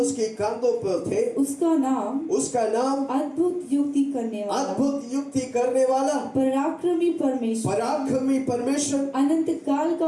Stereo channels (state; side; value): identical; both; correlation 1.00